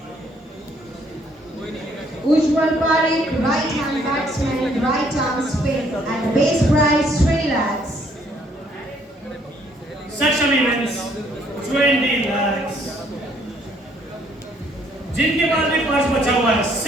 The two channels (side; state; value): both; normal; correlation 0.65